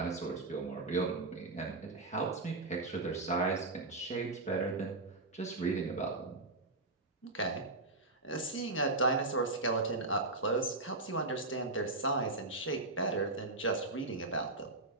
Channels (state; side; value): quieter; left; 3.1 dB